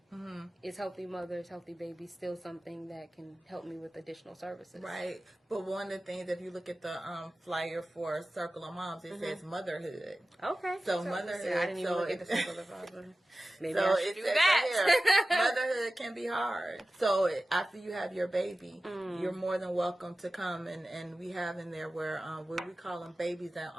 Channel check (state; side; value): normal; both; correlation 0.95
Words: Mm-hmm. Is Healthy Mothers, Healthy Babies still something that can help me with additional services? Right. But one of the things, if you look at the flyer for Circle of Moms, it says motherhood. Okay. So motherhood. I didn't even look at the Circle of Moms. Maybe So I should do that. Motherhood can be hard. So after you have your baby, you're more than welcome to come, and we have in there where we call them babies in